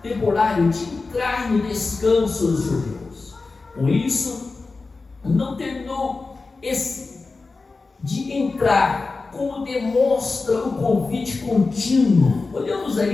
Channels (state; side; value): quieter; right; 3.9 dB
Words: de entrar no descanso dos judeus. Com isso, não terminou esse de entrar, como demonstra o convite contínuo. Olhamos